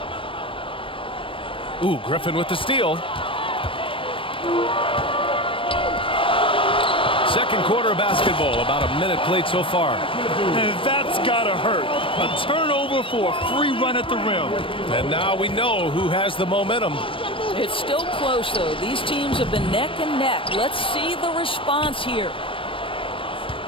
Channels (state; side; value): late; right; 0.25 ms